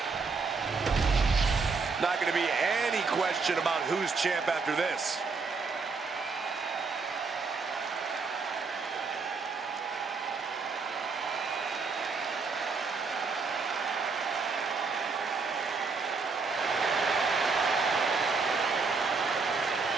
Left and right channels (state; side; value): quieter; left; 4.6 dB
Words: Not going to be any question about who's champ after this.